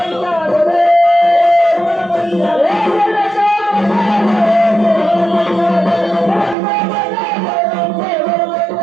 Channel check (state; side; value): drops out; left; at 6.6 s